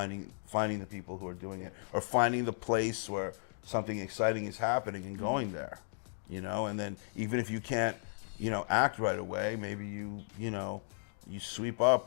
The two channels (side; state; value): right; silent; digital silence